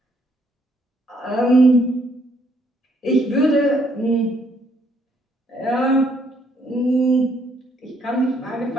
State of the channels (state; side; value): normal; both; correlation 0.69